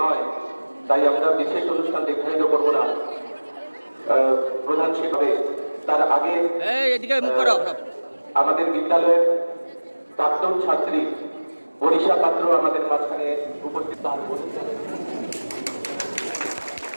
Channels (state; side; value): inverted; both; correlation -1.00